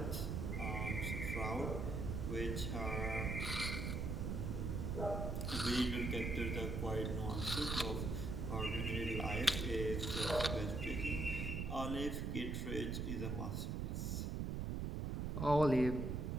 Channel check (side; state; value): right; noise; rumble, 1 dB below the sound